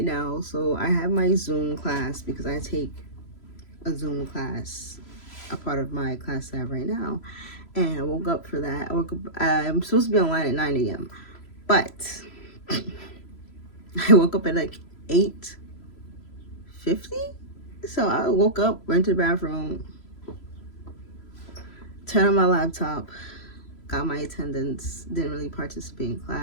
now. So I have my Zoom class, because I take a Zoom class, a part of my class I have right now, and I woke up for that. I'm supposed to be online at 9 a.m. but I woke up at like 8:50. So I woke up, went to the bathroom, turned on my laptop, got my attendance, didn't really participate in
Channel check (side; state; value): right; late; 3.0 ms